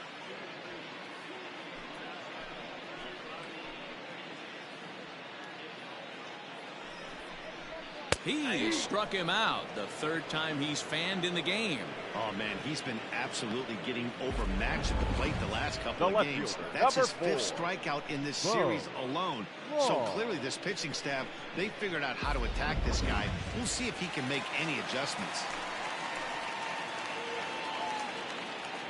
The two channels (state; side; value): identical; both; correlation 1.00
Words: He struck him out, the third time he's fanned in the game. Oh, man, he's been absolutely getting overmatched at the plate the last couple of games. That's his fifth strikeout in this series alone. So clearly this pitching staff, they figured out how to attack this guy. We'll see if he can make any adjustments.